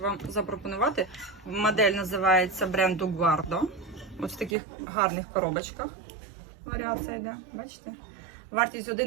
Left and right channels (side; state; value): left; drops out; at 4.5 s